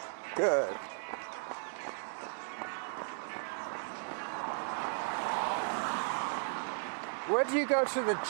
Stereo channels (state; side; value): silent; left; digital silence